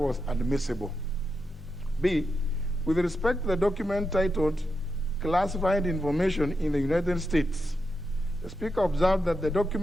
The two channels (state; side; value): normal; both; correlation 0.86